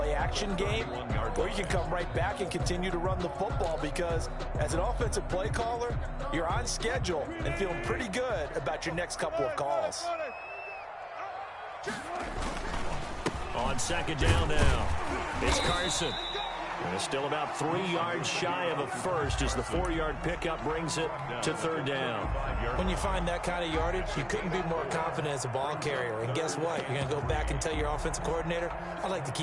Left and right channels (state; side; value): identical; both; correlation 1.00